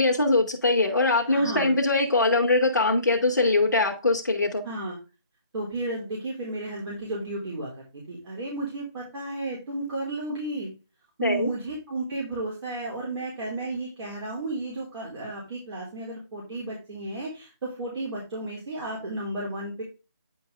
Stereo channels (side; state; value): both; inverted; correlation -0.53